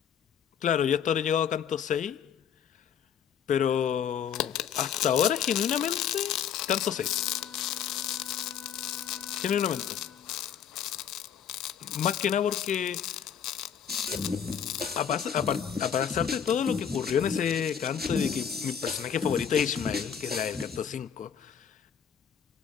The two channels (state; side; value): quieter; right; 8.2 dB